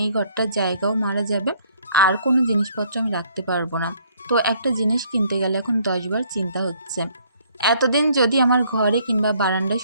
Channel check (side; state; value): both; inverted; correlation -0.63